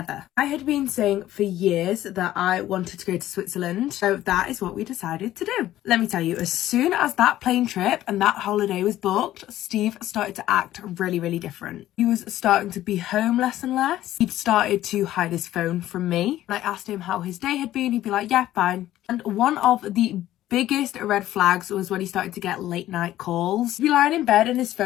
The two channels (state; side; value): quieter; right; 13.8 dB